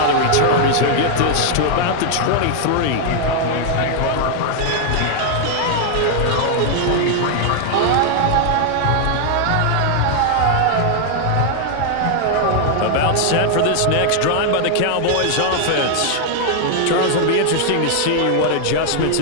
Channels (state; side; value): different; both; correlation 0.00